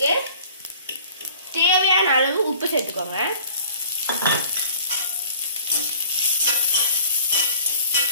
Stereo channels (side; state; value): both; inverted; correlation -0.50